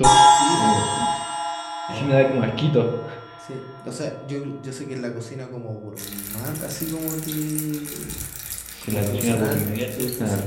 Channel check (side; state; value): both; identical; correlation 1.00